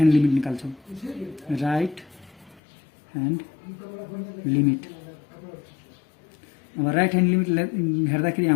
लिमिट निकाल्छौँ। राइट ह्यान्ड लिमिट अब राइट ह्यान्ड लिमिट हेर्दाखेरि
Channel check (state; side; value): drops out; right; at 2.6 s